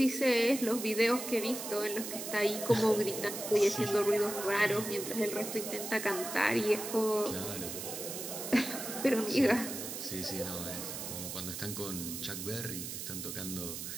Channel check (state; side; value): noise; right; hiss, 7 dB below the sound